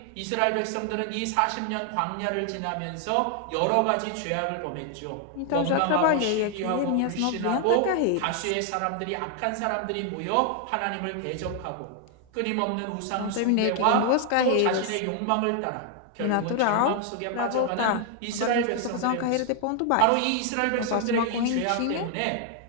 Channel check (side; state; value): both; different; correlation 0.00